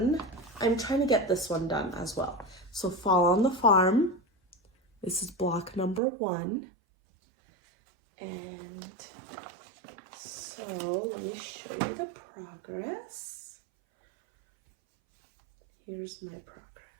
I'm trying to get this one done as well. So Fall on the Farm, this is block number 1. And so let me show you the progress. Here's my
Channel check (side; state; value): left; drops out; at 6.0 s